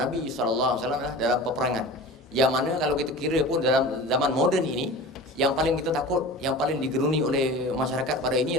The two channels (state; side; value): normal; both; correlation 0.36